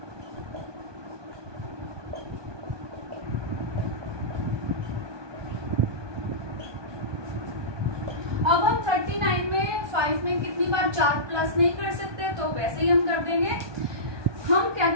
अब हम 39 में 5 में कितनी बार 4 प्लस नहीं कर सकते, तो वैसे ही हम कर देंगे। हम क्या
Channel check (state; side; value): late; left; 1.2 ms